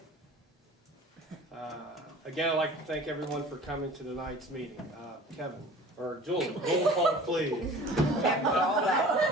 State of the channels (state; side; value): normal; both; correlation 0.44